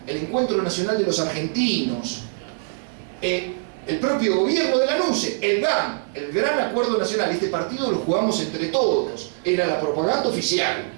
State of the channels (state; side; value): silent; left; digital silence